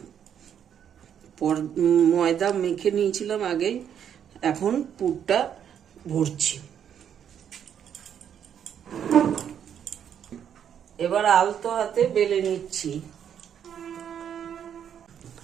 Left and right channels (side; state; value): left; quieter; 8.8 dB